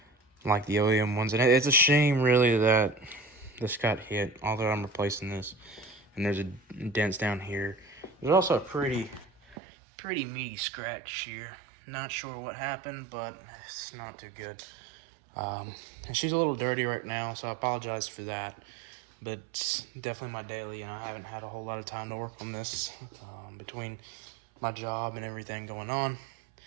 OEM ones. And it's a shame, really, that this got hit, although I'm replacing this. And there's a dents down here. There's also a pretty meaty scratch here. Not sure what happened, but it's not too good. And she's a little dirty right now, so I apologize for that. But it's definitely my daily, and I haven't had a whole lot of time to work on this between my job and everything going on.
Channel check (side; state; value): left; drops out; at 9.6 s